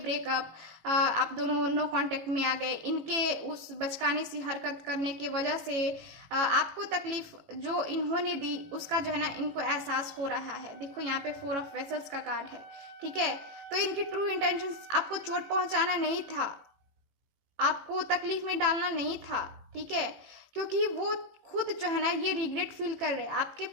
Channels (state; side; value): late; left; 18 ms